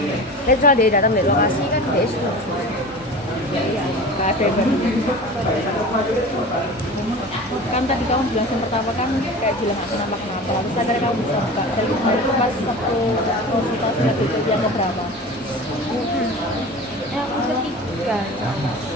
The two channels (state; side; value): normal; both; correlation 0.35